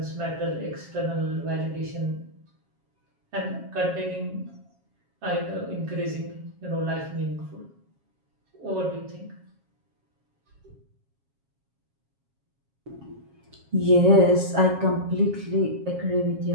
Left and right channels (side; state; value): left; late; 7.3 ms